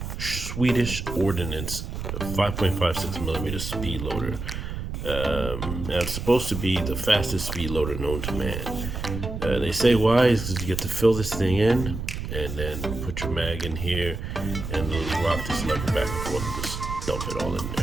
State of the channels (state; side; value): noise; right; rumble, 6 dB below the sound